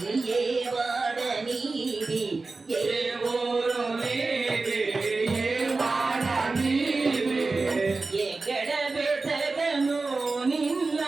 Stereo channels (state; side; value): quieter; left; 3.8 dB